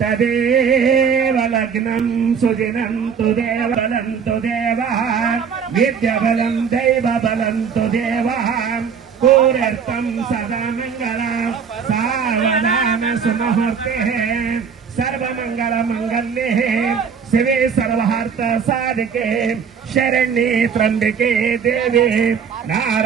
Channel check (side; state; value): left; quieter; 6.6 dB